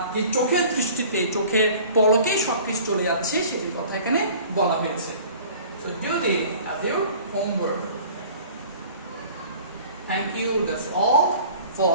যে চোখের দৃষ্টিতে, চোখের পলকে সবকিছু চলে যাচ্ছে সেটির কথা এখানে বলা হয়েছে। So do this as your homework. Thank you. That's all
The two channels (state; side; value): inverted; both; correlation -0.47